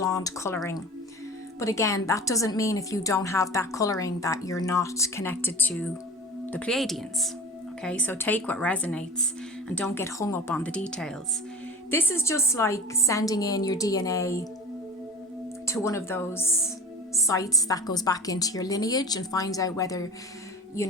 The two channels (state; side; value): normal; both; correlation 0.35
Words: colouring. But again, that doesn't mean if you don't have that colouring that you're not connected to the Pleiadians. Okay, so take what resonates and don't get hung up on the details. This is just like sending in your DNA to one of those sites that goes back into your lineage and finds out whether,